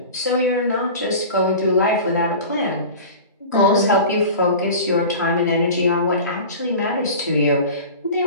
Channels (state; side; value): inverted; both; correlation -0.36